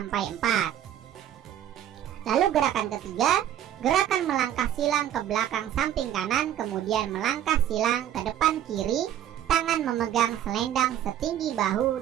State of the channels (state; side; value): quieter; left; 10.9 dB